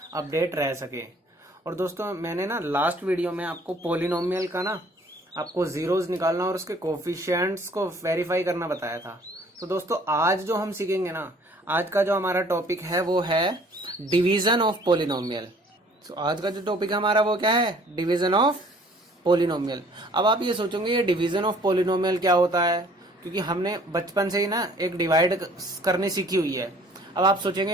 अपडेट रह सके। और दोस्तों, मैंने ना लास्ट वीडियो में आपको पोलिनोमियल का ना आपको जीरोज निकालना और उसके कोफिशिएंट्स को वेरीफाई करना बताया था। तो दोस्तों, आज जो हम सीखेंगे ना, आज का जो हमारा टॉपिक है वो है डिवीजन ऑफ पोलिनोमियल। तो आज का जो टॉपिक है हमारा वो क्या है? Division of polynomial. अब आप ये सोचोगे ये डिवीजन ऑफ पोलिनोमियल क्या होता है, क्योंकि हमने बचपन से ही ना एक डिवाइड करनी सीखी हुई है। अब आप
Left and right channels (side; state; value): both; normal; correlation 0.55